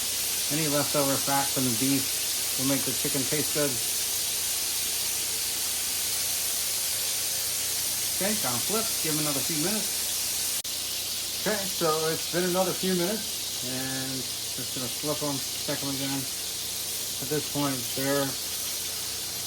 any leftover fat from the beef will make the chicken taste good. Okay, gonna flip, give them another few minutes. Okay, so it's been another few minutes, and just gonna flip them, check them again. At this point, they're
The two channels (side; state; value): both; identical; correlation 1.00